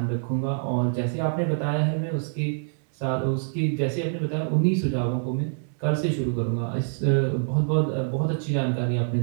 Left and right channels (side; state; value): left; silent; 61 dB below the other